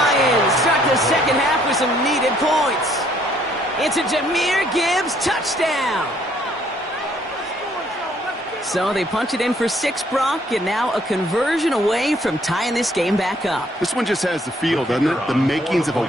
start the second half with some needed points. It's a Jahmyr Gibbs touchdown. So they punch it in for 6, Brock, and now a conversion away from tying this game back up. This one just has the feel, doesn't it? The makings of a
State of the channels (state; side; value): normal; both; correlation 0.65